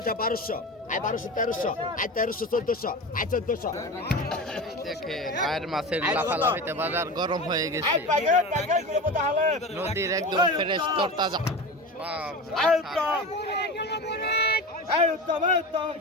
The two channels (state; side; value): normal; both; correlation 0.28